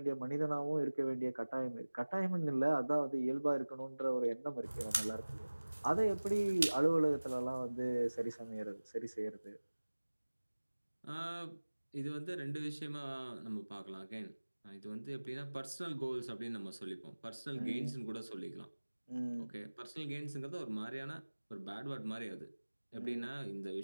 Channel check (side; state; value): both; inverted; correlation -1.00